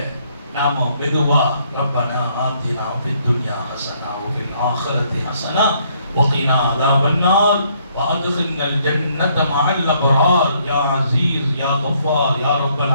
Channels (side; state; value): both; inverted; correlation -0.68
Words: நாம மெதுவா ரப்பனா ஆத்தினா ஃபித் துன்யா ஹஸனா வ ஃபில் ஆখিরাতি ஹஸனா வ கினா அஸாபன்னார் வ அத்கில்னல் ஜன்னத மஅல் அப்ரார் யா அஸீஸ் யா கஃபார் யா ரப்பல்